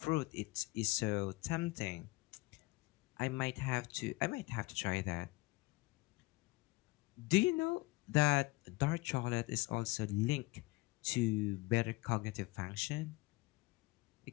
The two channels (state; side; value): quieter; right; 22.4 dB